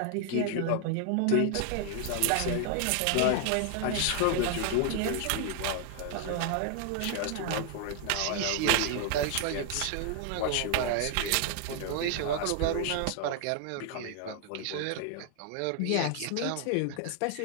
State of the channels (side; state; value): both; different; correlation 0.00